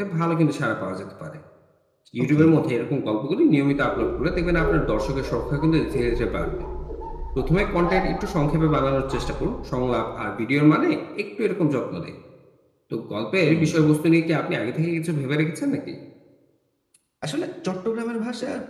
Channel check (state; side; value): identical; both; correlation 1.00